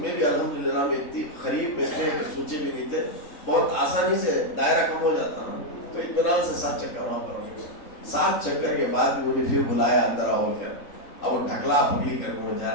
में भी अल्हम्दुलिल्लाह में इतनी करीब में थे कि सोचे भी नहीं थे, बहुत आसानी से दायरा कम हो जाता ना, तो इत्मीनान से 7 चक्कर वहाँ पर हो गए। 7 चक्कर के बाद मुझे फिर बुलाया अंदर आओ कर, अब वो ढकला पकड़ी कर मुझे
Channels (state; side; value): late; right; 3.9 ms